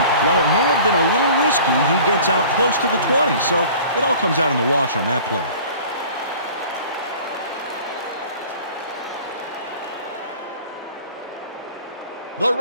while it may have been a little risky, he gets out close to the 20, so it all comes out in the wash on that play. The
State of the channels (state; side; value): inverted; both; correlation -0.45